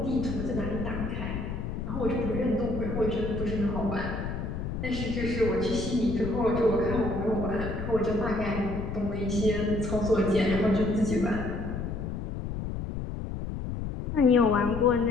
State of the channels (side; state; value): left; noise; rumble, 5 dB below the sound